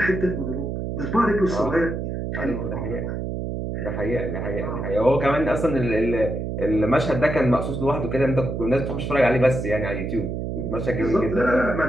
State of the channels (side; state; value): right; noise; hum, 4 dB below the sound